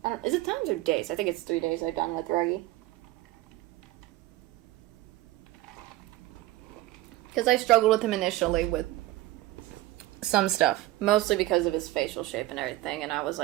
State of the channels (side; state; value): left; quieter; 16.9 dB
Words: I don't, is it times or days? I think it's 3 days I've done with Ruggie. Because I struggled with him initially with some stuff, mostly because of his facial shape and everything, and I was